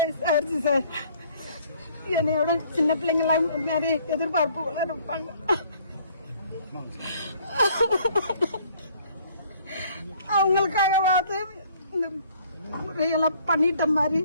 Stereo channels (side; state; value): both; inverted; correlation -0.59